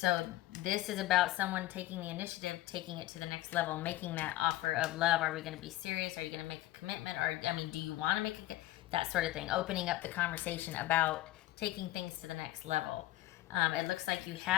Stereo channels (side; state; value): right; quieter; 16.3 dB